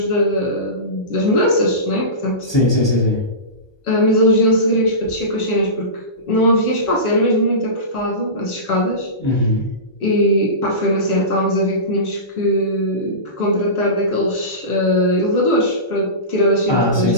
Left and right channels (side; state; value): right; late; 1.2 ms